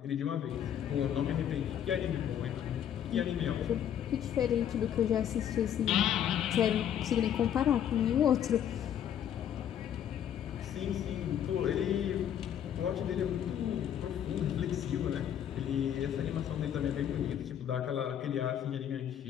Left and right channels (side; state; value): right; quieter; 9.7 dB